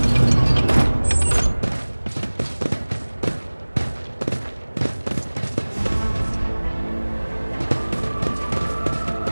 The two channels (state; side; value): inverted; both; correlation -1.00